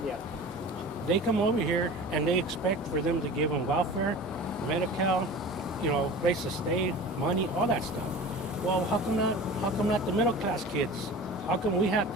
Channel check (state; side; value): normal; both; correlation 0.37